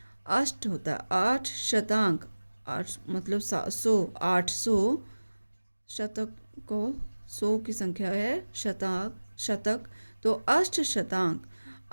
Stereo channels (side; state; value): both; inverted; correlation -1.00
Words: 8 होता है 8, 8 मतलब 800 शतक को 100 की संख्या है, शतक तो